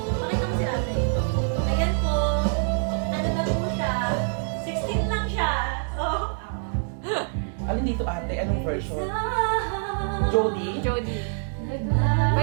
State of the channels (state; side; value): silent; left; digital silence